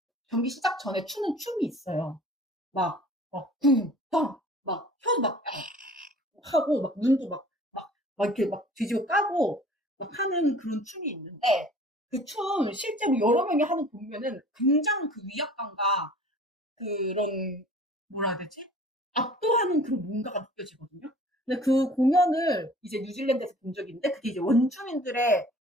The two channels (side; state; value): both; normal; correlation 0.48